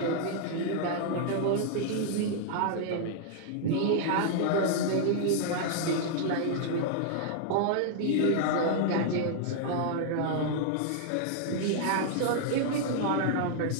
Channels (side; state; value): both; different; correlation -0.01